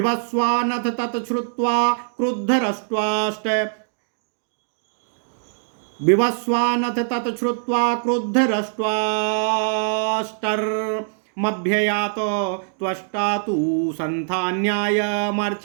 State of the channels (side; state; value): left; silent; digital silence